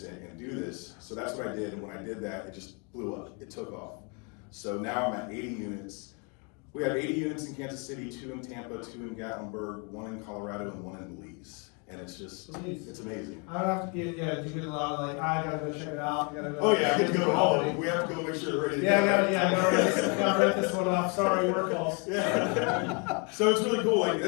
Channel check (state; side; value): quieter; right; 34.7 dB